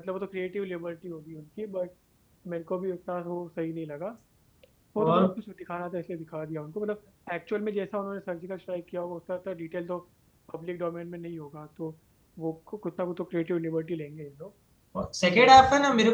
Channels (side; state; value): both; identical; correlation 1.00